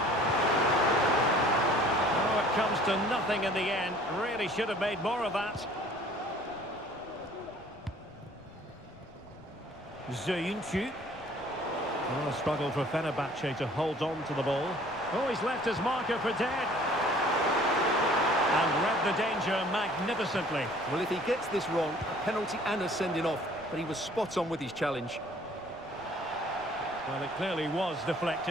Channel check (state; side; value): noise; left; rumble, 24 dB below the sound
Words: Oh, it comes to nothing in the end. Really should have made more of that. Zayuncu. Oh, a struggle for Fenerbahce to hold on to the ball. Oh, he's left his marker for dead. And read the danger magnificently. Well, if he gets this wrong, a penalty and a sending off, but he was spot on with his challenge. Well, it clearly was